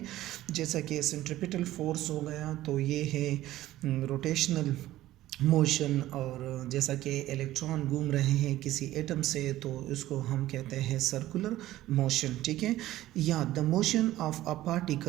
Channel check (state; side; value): quieter; left; 15.0 dB